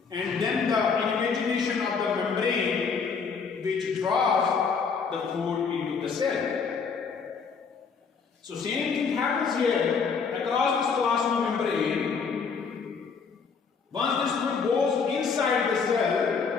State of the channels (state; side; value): quieter; right; 5.6 dB